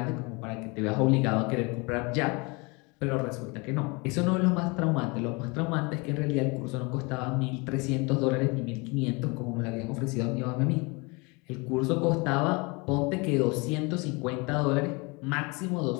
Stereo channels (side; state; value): right; quieter; 28.2 dB